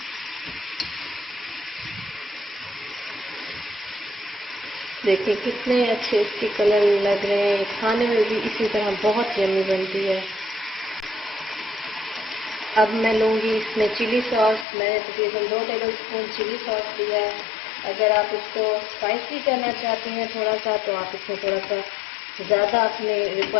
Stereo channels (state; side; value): drops out; right; at 14.7 s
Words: देखिए कितने अच्छे इसके कलर लग रहे हैं। खाने में भी इसी तरह बहुत यम्मी बनती है। अब मैं लूँगी इसमें चिली सॉस। मैंने तकरीबन 2 टेबलस्पून चिली सॉस लिया है। अगर आप इसको स्पाइसी करना चाहते हैं थोड़ा सा, तो आप इसमें थोड़ा सा ज़्यादा अपने